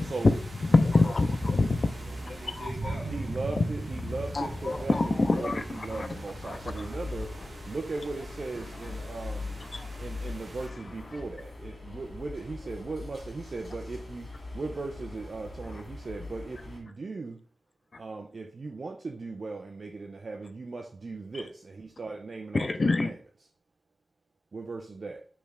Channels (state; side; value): normal; both; correlation 0.94